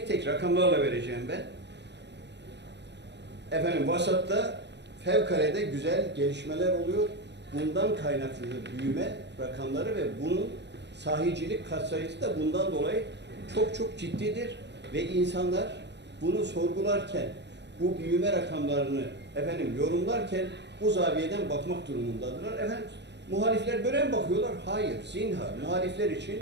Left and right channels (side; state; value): left; late; 0.50 ms